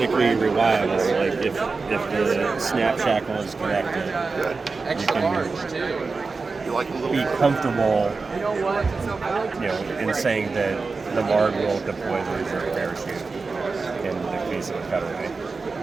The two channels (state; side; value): quieter; left; 4.2 dB